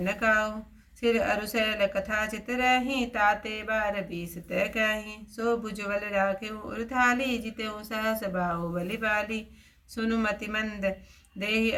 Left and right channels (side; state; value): both; identical; correlation 1.00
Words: काऊ। सिर अरुशैल कथा चित रही, ताते 12 20 तय कही। सो भुजबल राखे उर्थाली, जितेऊ सहस बाहु बलि बाली। सुनु मति मंद देहि